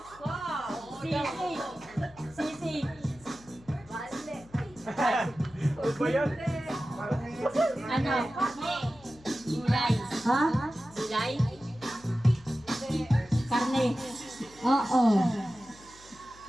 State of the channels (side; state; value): left; noise; hum, 24 dB below the sound